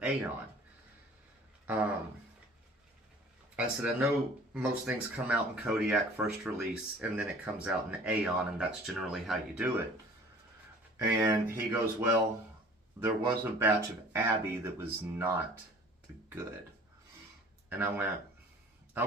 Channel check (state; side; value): normal; both; correlation 0.48